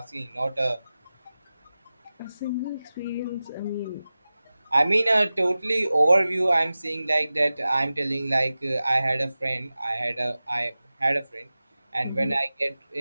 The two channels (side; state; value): both; inverted; correlation -0.96